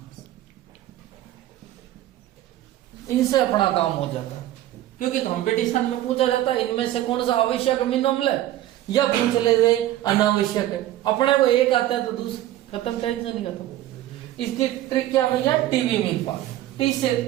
इनसे अपना काम हो जाता है, क्योंकि कंपटीशन में पूछा जाता है इनमें से कौन सा आवश्यक अमीनो अम्ल है, या पूछ ले रहे अनावश्यक है। अपने को एक आता है तो दूसरा खत्म, टेंशन नहीं खत्म। इसकी ट्रिक क्या भैया, टीवी मील पास। टी से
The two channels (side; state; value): left; quieter; 14.0 dB